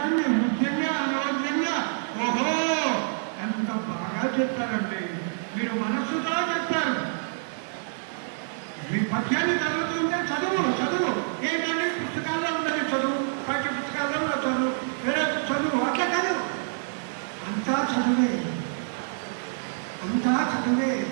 ముఖ్యంగా అనవసరంగా ఓహో ఎంత బాగా చెప్తారండి, మీరు మనస్సుగా చెప్తారు. మీ పద్యాన్ని చదువుతుంటే చదువు ఏంటంటే పుస్తకాల్లో ఉన్నది చదువు, పాఠ్య పుస్తకాల్లో ఉన్న చదువు, వేరే చదువు అట్లా కాదు. అంతా చదువే.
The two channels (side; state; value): left; silent; digital silence